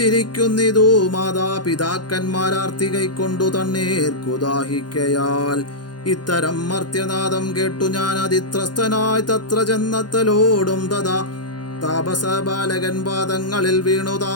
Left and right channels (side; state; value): right; late; 0.70 ms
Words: മാതാപിതാക്കന്മാരാർത്തി കൈക്കൊണ്ടു തണ്ണീർക്കു ദാഹിക്കയാൽ. ഇത്തരം മർത്യനാദം കേട്ടു ഞാൻ അതിത്രസ്തനായി തത്ര ചെന്നത്തലോടും തഥാ താപസ ബാലകൻ പാദങ്ങളിൽ വീണു